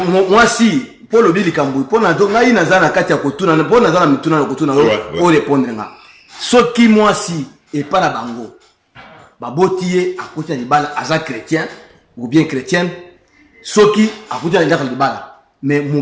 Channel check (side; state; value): both; identical; correlation 1.00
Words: si pour le bilikambu pour na donc ngai nazana kati ya kotuna pour nazana mituna na kotuna o répondre nga. Soki moi si et pas la bango. Babotiye à côté de bala aza chrétien ou bien chrétienne. Soki à côté de bala mais mon